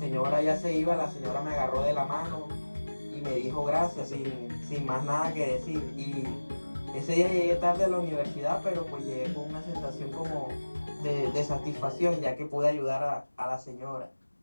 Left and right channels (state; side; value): inverted; both; correlation -1.00